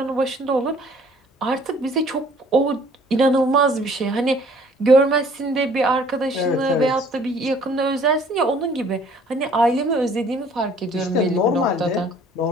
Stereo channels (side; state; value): both; normal; correlation 0.56